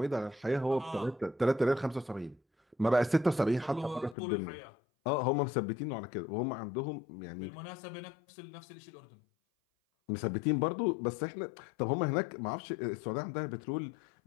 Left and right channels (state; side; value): drops out; right; at 4.2 s